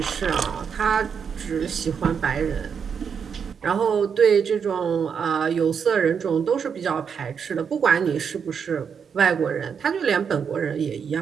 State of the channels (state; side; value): quieter; left; 6.8 dB